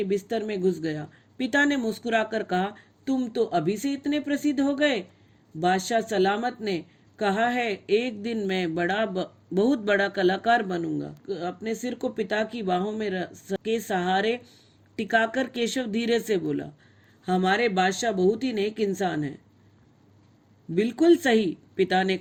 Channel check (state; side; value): identical; both; correlation 1.00